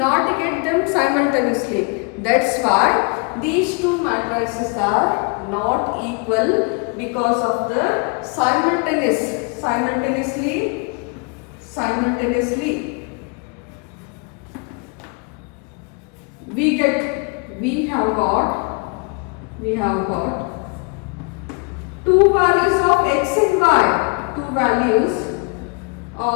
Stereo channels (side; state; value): right; quieter; 32.4 dB